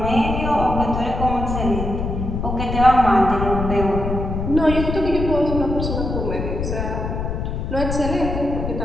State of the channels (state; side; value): noise; left; rumble, 3 dB below the sound